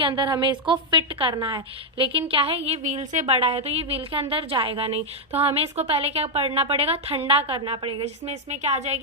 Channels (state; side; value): normal; both; correlation -0.01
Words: अंदर हमें इसको फिट करना है। लेकिन क्या है, ये व्हील से बड़ा है तो ये व्हील के अंदर जाएगा नहीं, तो हमें इसको पहले क्या करना पड़ेगा, ठंडा करना पड़ेगा, जिसमें इसमें क्या आ